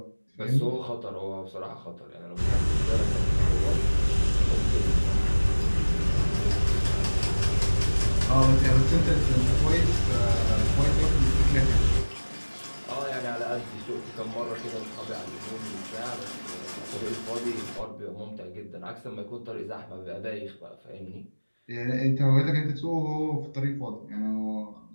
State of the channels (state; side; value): inverted; both; correlation -1.00